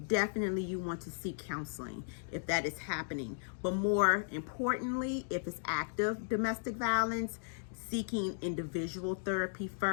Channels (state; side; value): silent; right; digital silence